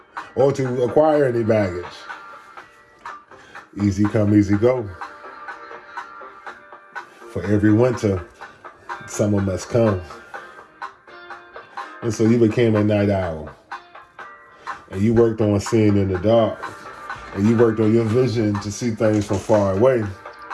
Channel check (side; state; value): both; identical; correlation 1.00